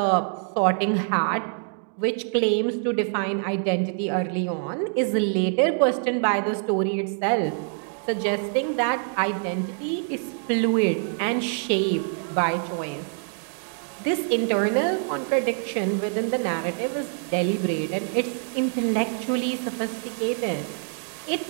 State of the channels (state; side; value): silent; left; 61 dB below the other